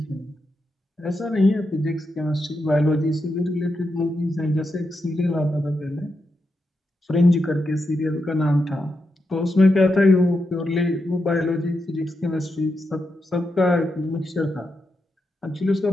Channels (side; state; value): both; normal; correlation 0.85